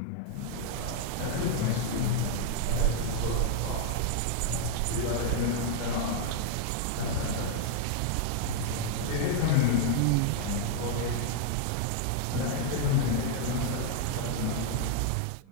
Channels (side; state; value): both; different; correlation 0.00